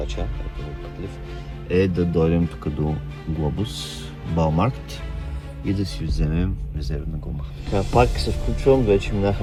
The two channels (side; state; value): both; identical; correlation 1.00